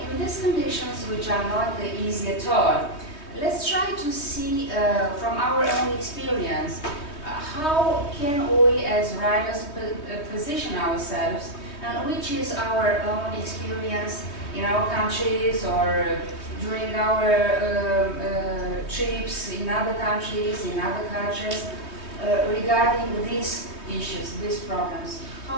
in these conditions, which are not easy at all, let's try to see from our own experience how can we as writers position ourselves, and which is our own experience in our countries or during our trips in other countries, in other cultures, regarding these issues, these problems.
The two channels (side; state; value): right; late; 3.2 ms